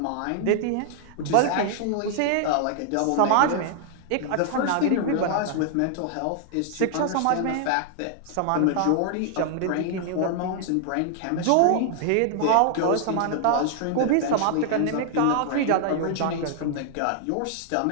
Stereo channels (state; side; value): different; both; correlation 0.00